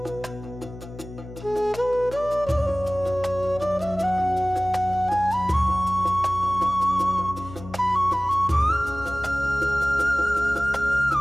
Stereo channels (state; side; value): noise; left; hum, 14 dB below the sound